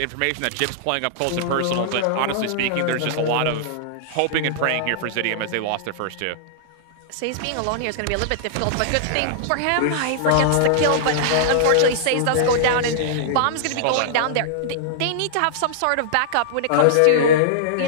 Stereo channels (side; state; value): both; different; correlation -0.02